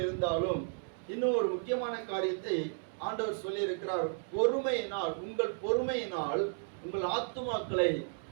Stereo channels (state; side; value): silent; left; digital silence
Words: இருந்தாலும் இன்னும் ஒரு முக்கியமான காரியத்தை ஆண்டவர் சொல்லி இருக்கிறார். பொறுமையினால், உங்கள் பொறுமையினால் உங்கள் ஆத்துமாக்களை